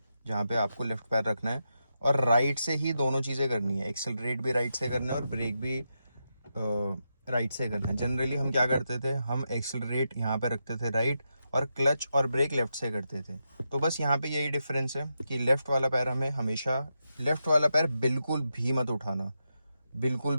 जहाँ पे आपको लेफ्ट पैर रखना है और राइट से ही दोनों चीज़ें करनी है। एक्सेलरेट भी राइट से करना है और ब्रेक भी राइट से करना है। जनरली हम क्या करते थे, हम एक्सेलरेट यहाँ पे रखते थे राइट और क्लच और ब्रेक लेफ्ट से करते थे। तो बस यहाँ पे यही डिफरेंस है कि लेफ्ट वाला पैर हमें हमेशा, लेफ्ट वाला पैर बिल्कुल भी मत उठाना, बिल्कुल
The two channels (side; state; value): both; inverted; correlation -0.86